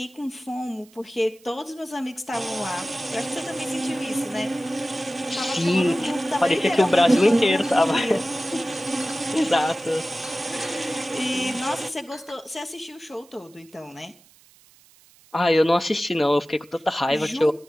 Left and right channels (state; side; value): noise; right; hiss, 28 dB below the sound